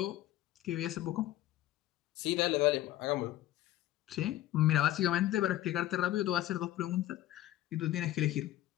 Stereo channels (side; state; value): right; quieter; 14.5 dB